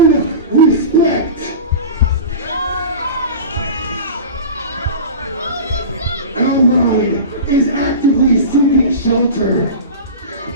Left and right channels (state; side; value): inverted; both; correlation -0.31